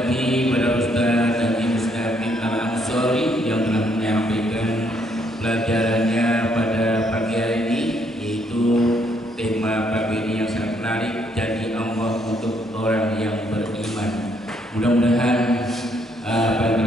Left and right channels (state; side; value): normal; both; correlation 0.71